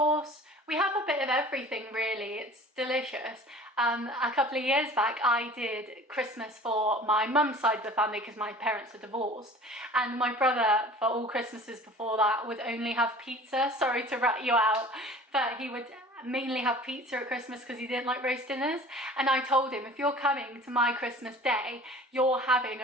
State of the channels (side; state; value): both; normal; correlation 0.44